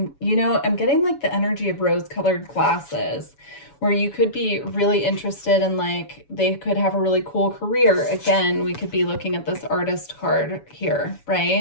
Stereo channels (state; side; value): late; right; 7.1 ms